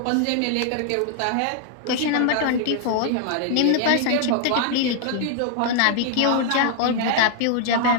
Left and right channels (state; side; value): different; both; correlation 0.00